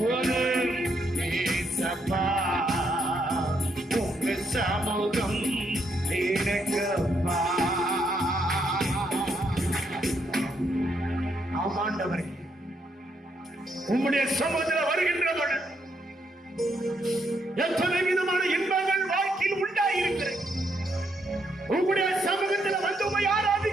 ஏசப்பா, உங்க சமூகம் எனக்கப்பா. ஆமாண்டவரே, உம்முடைய சமூகத்தில் வருகின்ற பொழுது எத்தனை விதமான இன்பங்கள் வாழ்க்கையில் உண்டாயிருக்கிறது. உம்முடைய சமூகத்தில் வந்து உம்மை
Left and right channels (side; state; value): both; normal; correlation 0.76